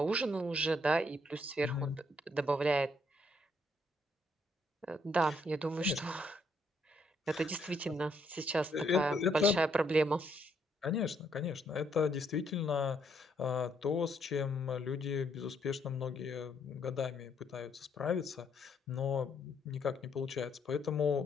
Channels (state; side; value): normal; both; correlation 0.72